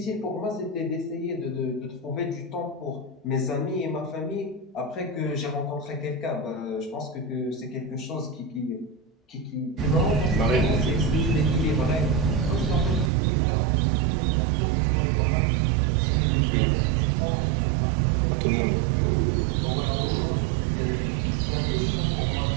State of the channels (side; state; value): left; drops out; at 13.1 s